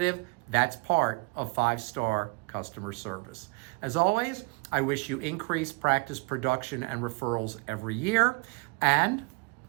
That's part of 5-star customer service. As always, I wish you increased practice production and referrals every year, and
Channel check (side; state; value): left; quieter; 27.6 dB